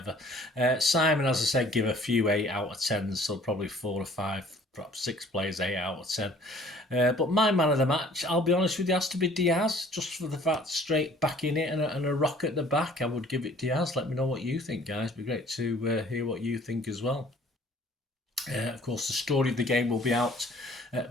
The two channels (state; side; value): normal; both; correlation 0.54